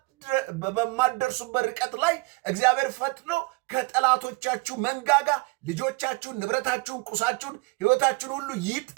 በማትደርሱበት ርቀት ላይ እግዚአብሔር ፈጥኖ ከጠላቶቻችሁ መንጋጋ ልጆቻችሁን፣ ንብረታችሁን፣ ቁሳችሁን፣ ሕይወታችሁን ሁሉ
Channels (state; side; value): quieter; left; 26.4 dB